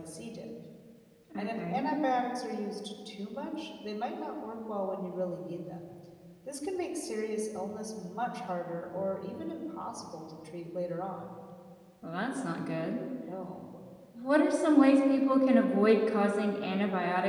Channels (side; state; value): both; identical; correlation 1.00